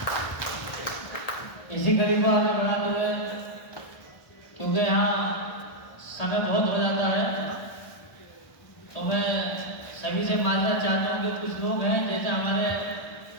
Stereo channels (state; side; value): late; right; 1.8 ms